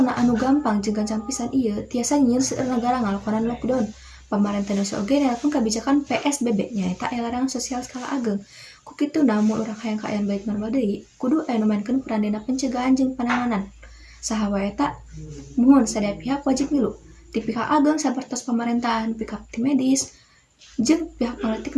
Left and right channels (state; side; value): identical; both; correlation 1.00